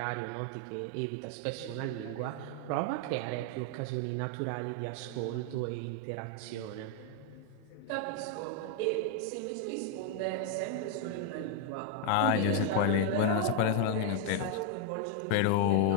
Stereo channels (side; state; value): both; different; correlation 0.00